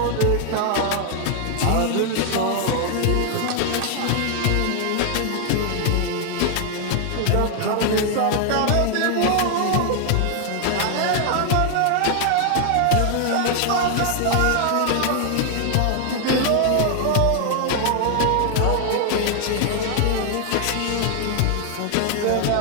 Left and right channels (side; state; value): both; different; correlation 0.00